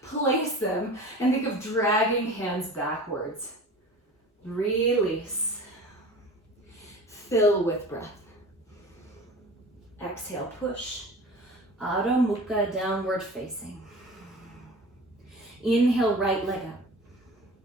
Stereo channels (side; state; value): both; normal; correlation 0.38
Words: place them and think of dragging hands backwards. Release. Fill with breath. Exhale, push. Adho Mukha, downward facing. Inhale, right leg up.